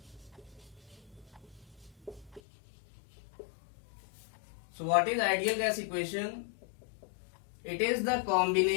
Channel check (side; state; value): right; drops out; at 2.4 s